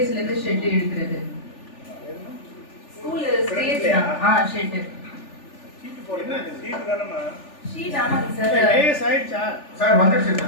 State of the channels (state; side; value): late; right; 3.4 ms